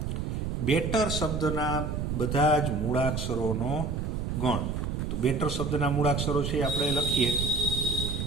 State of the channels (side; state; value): right; noise; rumble, 2 dB below the sound